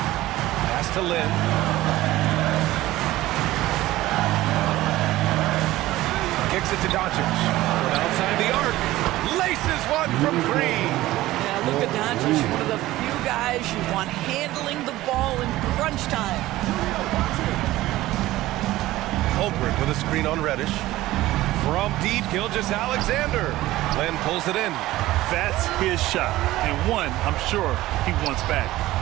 Pass to Lynn. Kicks it to Doncic. From outside the arc. Laces one from 3. Yeah, Luka Doncic, one of the few guys you want handling the ball in crunch time. Holmgren with a screen on Reddish. From deep, Gilgeous-Alexander. Len pulls it in. That's his shot. And one, I'm sure he wants back.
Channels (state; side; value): quieter; left; 16.6 dB